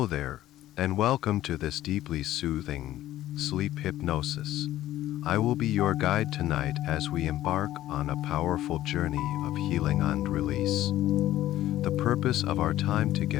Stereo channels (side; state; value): right; quieter; 14.0 dB